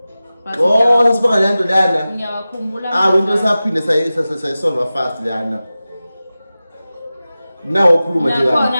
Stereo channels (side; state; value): both; inverted; correlation -0.95